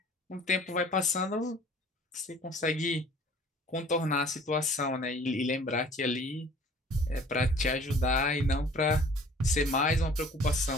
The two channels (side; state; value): both; normal; correlation 0.51